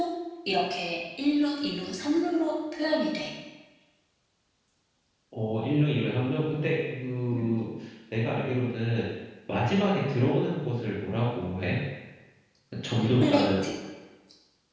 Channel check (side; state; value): both; identical; correlation 1.00